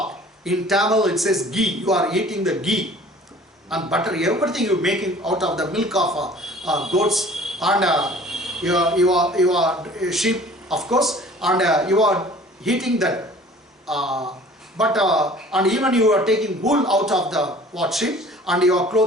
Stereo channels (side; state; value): both; normal; correlation 0.49